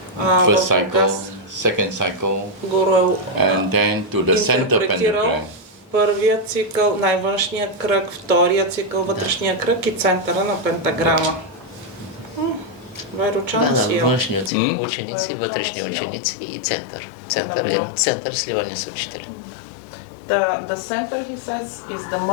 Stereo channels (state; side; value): drops out; right; at 14.5 s